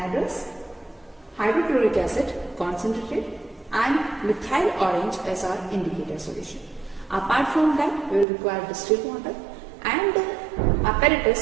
hydrochloric acid concentrated, and methyl orange as our indicator solution. Apart from that, we will require distilled water, and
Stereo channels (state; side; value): drops out; left; at 8.2 s